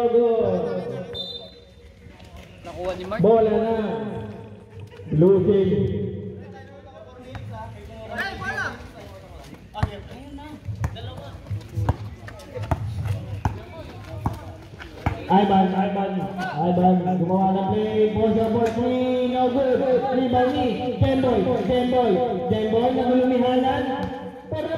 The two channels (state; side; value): identical; both; correlation 1.00